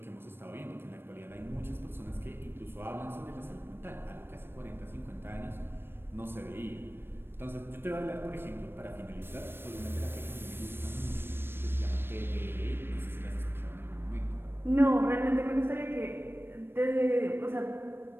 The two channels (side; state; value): left; late; 0.10 ms